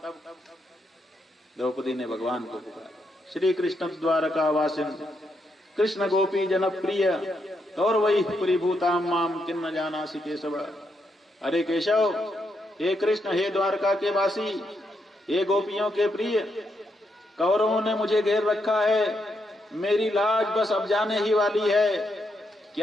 द्रौपदी ने भगवान को पुकारा। श्री कृष्ण द्वारका वासिन कृष्ण गोपी जनप्रिय और वही परिभूताम माम किन्न जानासि केशव। अरे केशव, हे कृष्ण, हे द्वारका के वासी, हे गोपियों के प्रिय, कौरवों ने मुझे घेर रखा है, मेरी लाज बस अब जाने ही वाली है,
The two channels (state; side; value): normal; both; correlation 0.80